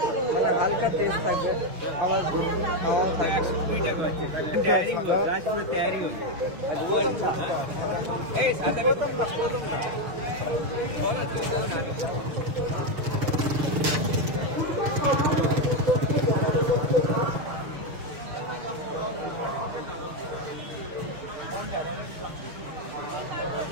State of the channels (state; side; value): late; left; 6.5 ms